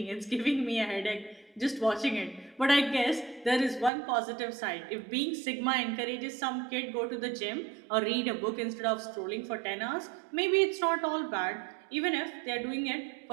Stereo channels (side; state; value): left; drops out; at 3.9 s